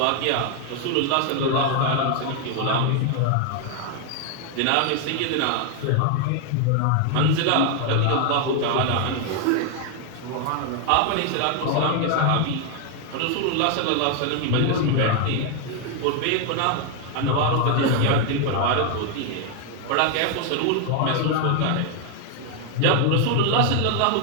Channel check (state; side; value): different; both; correlation 0.00